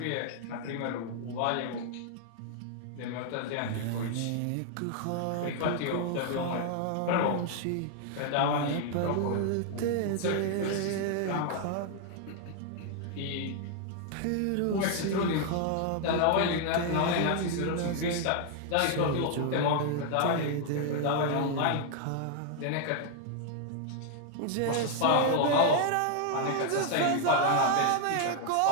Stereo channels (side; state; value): both; different; correlation 0.00